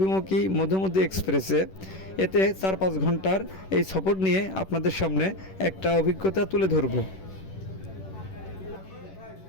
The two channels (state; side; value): late; right; 10 ms